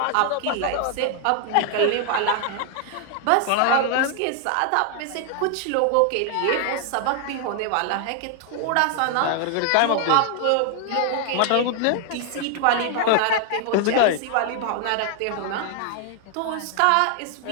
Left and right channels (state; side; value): different; both; correlation 0.00